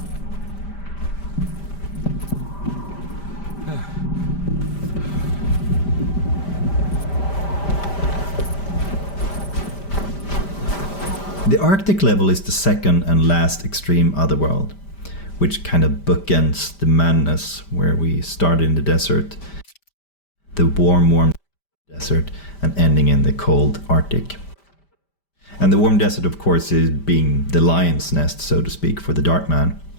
The Arctic level is the second and last extreme otherworld, which kind of bookends the madness where we start in the desert, the warm desert, and ending in the cold Arctic. And the warm desert, of course, is being the lion's nest, so to speak, for the Darkman.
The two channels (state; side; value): late; right; 5.1 ms